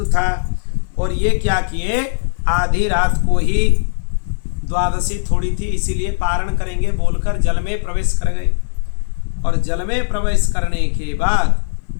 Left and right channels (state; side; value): silent; right; digital silence